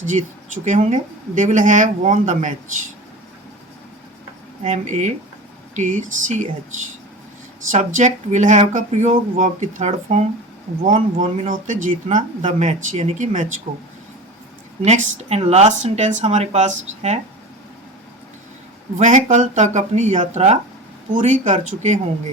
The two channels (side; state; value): both; normal; correlation 0.32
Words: जीत चुके होंगे। They will have won the match, MATCH। Subject will have का प्रयोग, वर्ब की third form won, won mean होते जीतना, द मैच यानी कि मैच को। नेक्स्ट एंड लास्ट सेंटेंस हमारे पास है, वह कल तक अपनी यात्रा पूरी कर चुके